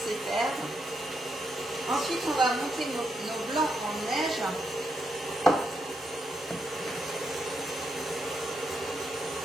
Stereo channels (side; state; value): both; normal; correlation 0.81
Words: faire. Ensuite, on va monter nos blancs en neige.